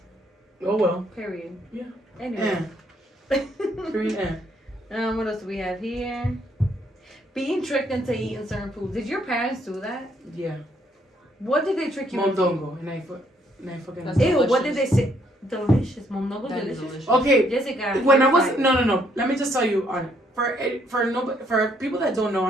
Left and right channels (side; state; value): both; normal; correlation 0.69